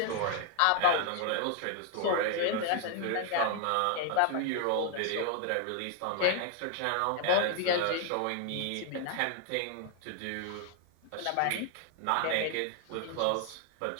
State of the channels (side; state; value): both; different; correlation 0.00